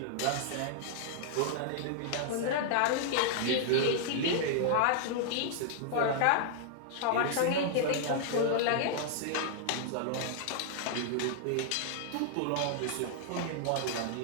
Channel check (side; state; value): both; different; correlation -0.01